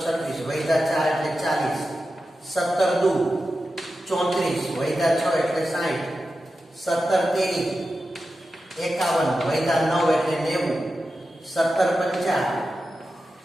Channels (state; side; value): normal; both; correlation 0.92